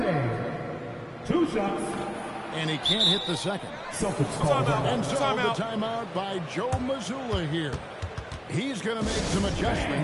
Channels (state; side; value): identical; both; correlation 1.00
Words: 2 shots. And he can't hit the second. Celtics call And so the timeout by Joe Mazzulla here. He's going to make some